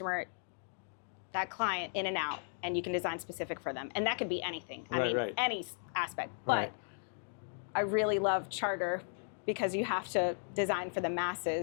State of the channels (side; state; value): right; silent; 54 dB below the other